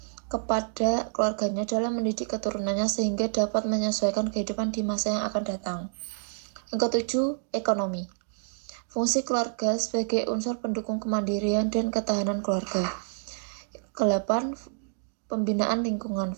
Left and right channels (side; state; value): left; silent; digital silence